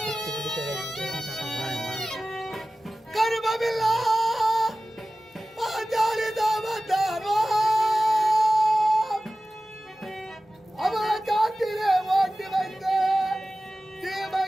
கருமமில்லா பாஞ்சாலி தாமத்தாரோ, அவன் காட்டிலே ஓட்டி வைத்த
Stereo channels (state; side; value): normal; both; correlation 0.96